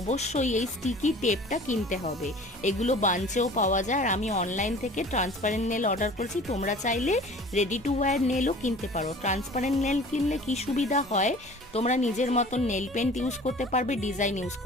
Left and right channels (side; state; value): both; normal; correlation 0.45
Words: এই স্টিকি টেপটা কিনতে হবে। এগুলো বাঞ্চেও পাওয়া যায় আর আমি অনলাইন থেকে ট্রান্সপারেন্ট নেল অর্ডার করেছি। তোমরা চাইলে রেডি টু ওয়্যার নেলও কিনতে পারো। ট্রান্সপারেন্ট নেল কিনলে কি সুবিধা হয়, তোমরা নিজের মতন নেল পেন্ট ইউজ করতে পারবে, ডিজাইন ইউজ